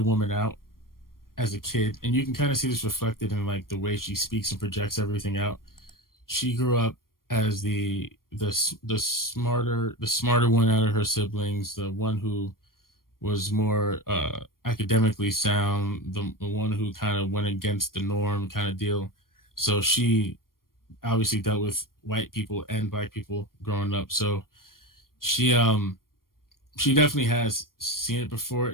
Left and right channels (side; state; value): right; late; 0.91 ms